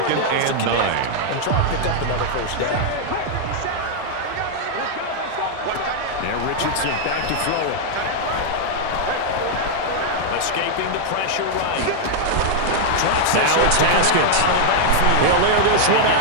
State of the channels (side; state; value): both; different; correlation -0.01